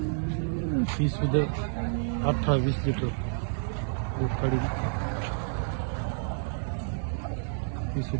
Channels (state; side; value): silent; left; 58 dB below the other